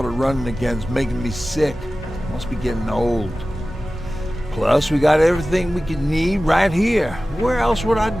of running again's making me sick. Must be getting old. Plus, we got everything we could need right here. Where else would I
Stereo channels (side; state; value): both; normal; correlation 0.96